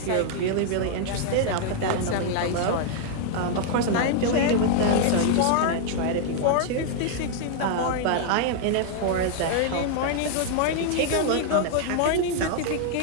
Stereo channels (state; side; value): different; both; correlation 0.00